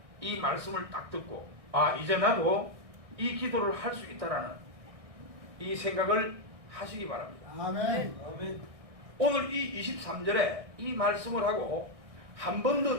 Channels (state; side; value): late; left; 1.6 ms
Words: 이 말씀을 딱 듣고 이제 나도 이 기도를 할 수 있다라는 이 생각을 하시기 바랍니다. 아멘. 아멘. 오늘 이 23절에 이 말씀을 하고 한 번 더